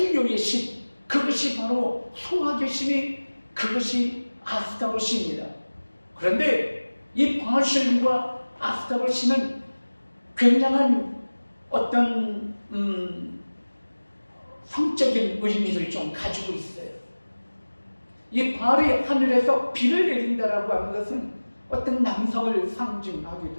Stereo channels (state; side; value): inverted; both; correlation -1.00